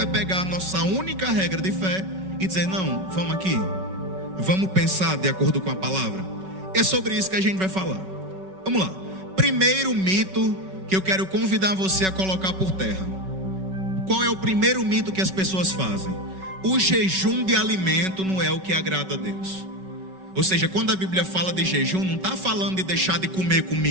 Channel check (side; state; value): left; late; 5.3 ms